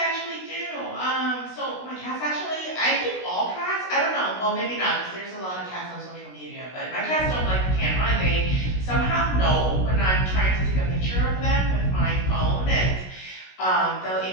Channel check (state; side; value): late; right; 16 ms